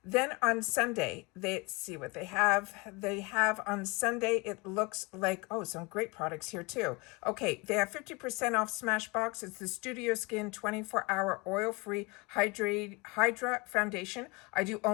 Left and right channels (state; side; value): quieter; right; 26.7 dB